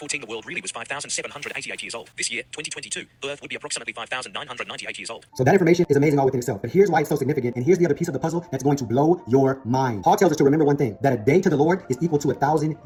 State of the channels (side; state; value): both; identical; correlation 1.00